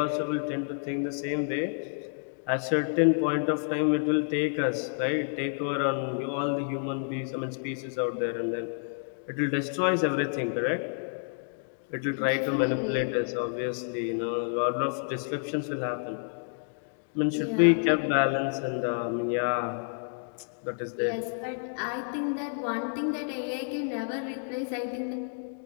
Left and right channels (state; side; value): silent; right; digital silence